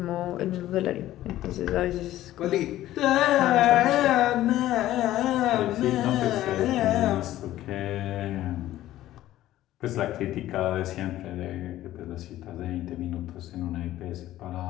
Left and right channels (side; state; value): right; quieter; 14.3 dB